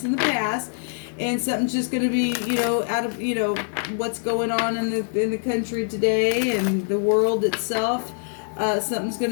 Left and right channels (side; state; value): right; silent; 61 dB below the other